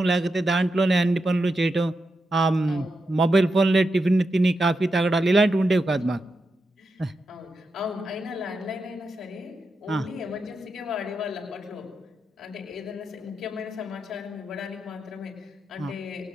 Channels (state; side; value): normal; both; correlation 0.87